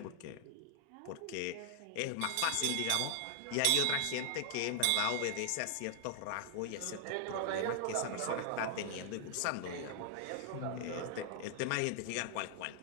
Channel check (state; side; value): different; both; correlation 0.00